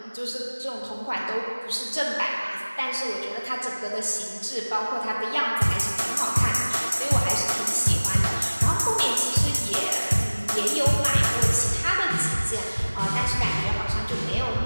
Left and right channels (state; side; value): inverted; both; correlation -1.00